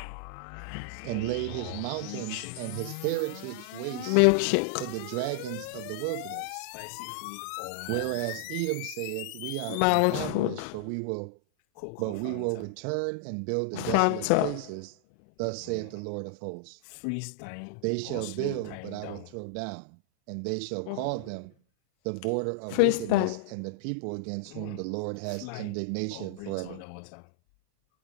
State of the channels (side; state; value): both; different; correlation -0.01